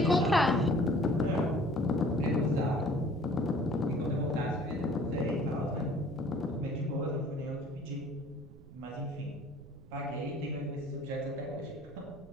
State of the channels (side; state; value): right; noise; rumble, 20 dB below the sound